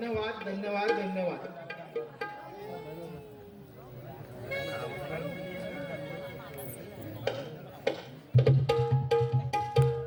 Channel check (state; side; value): identical; both; correlation 1.00